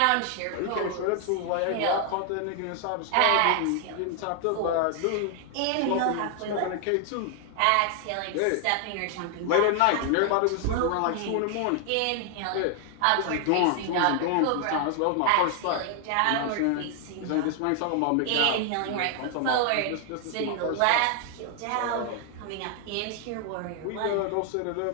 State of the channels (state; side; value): different; both; correlation 0.00